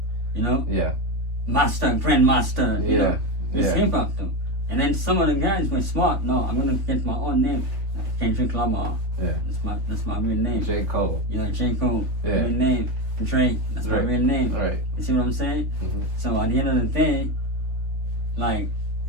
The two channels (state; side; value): late; left; 3.2 ms